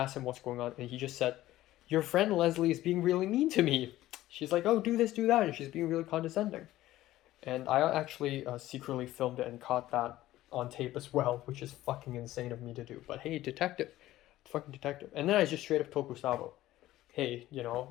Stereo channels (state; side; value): quieter; right; 15.2 dB